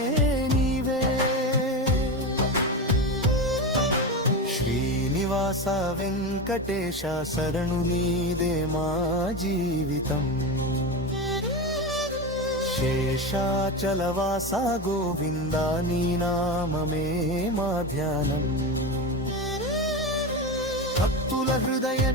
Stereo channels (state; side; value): normal; both; correlation 0.20